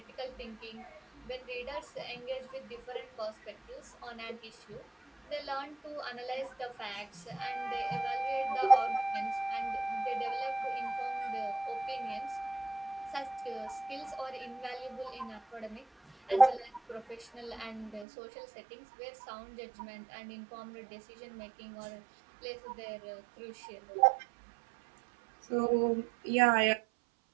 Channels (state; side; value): drops out; left; at 18.1 s